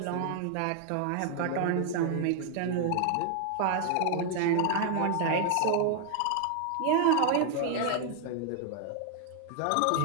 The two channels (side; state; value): both; different; correlation 0.00